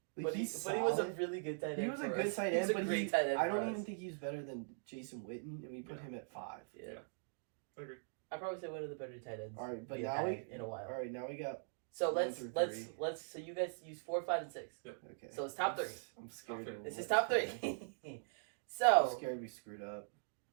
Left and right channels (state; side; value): silent; left; digital silence